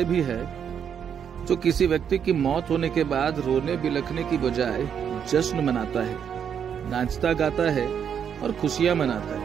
भी है जो किसी व्यक्ति की मौत होने के बाद रोने बिलखने की बजाय जश्न मनाता है, नाचता गाता है और खुशियां मनाता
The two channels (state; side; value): quieter; left; 8.0 dB